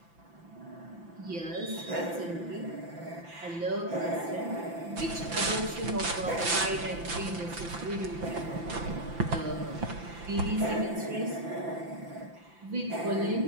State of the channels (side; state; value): left; late; 5.9 ms